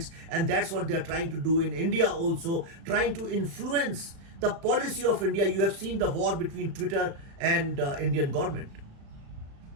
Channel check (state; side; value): late; left; 36 ms